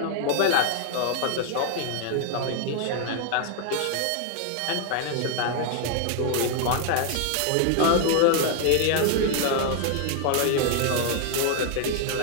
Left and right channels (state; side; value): different; both; correlation 0.00